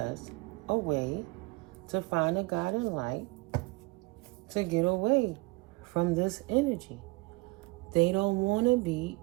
a way to find a guiding light to get away from this energy. They don't want to be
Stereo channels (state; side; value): quieter; left; 24.9 dB